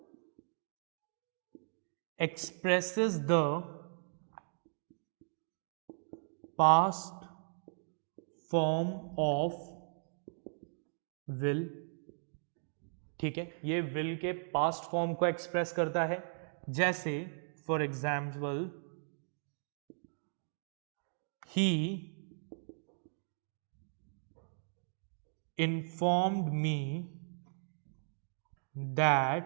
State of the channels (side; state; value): left; silent; digital silence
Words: expresses the past form of will। ठीक है, ये will के past form को एक्सप्रेस करता है। जैसे for example he informed me